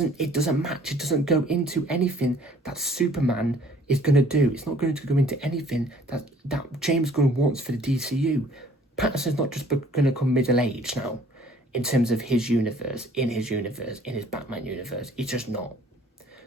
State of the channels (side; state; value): both; normal; correlation 0.56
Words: match. It doesn't go into anything that Superman is going to do. It's not going to go into anything that James Gunn wants for the DCU. Pattinson's not just going to come middle-aged now in terms of his universe, in his Batman universe. It's just not.